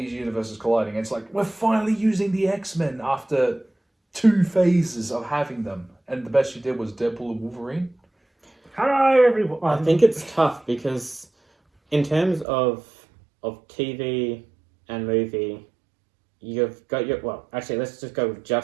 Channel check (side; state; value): left; drops out; at 12.5 s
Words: universes colliding. It's like we're finally using the X-Men after 2 phases of having them, and the best you did was Deadpool and Wolverine. Hello everyone. I think it's tough because, in terms of TV and movie, you've got your actually let's just go with